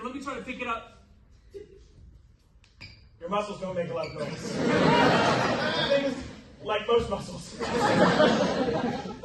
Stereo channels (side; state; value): both; identical; correlation 1.00